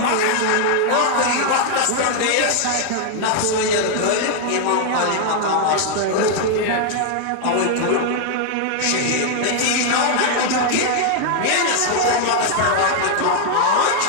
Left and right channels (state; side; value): different; both; correlation 0.00